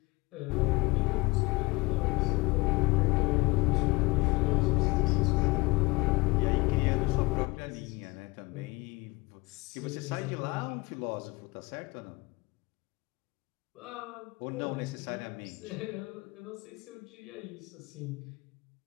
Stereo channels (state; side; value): quieter; right; 23.7 dB